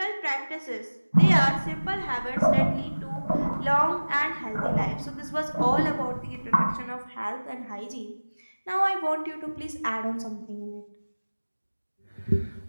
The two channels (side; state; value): both; inverted; correlation -1.00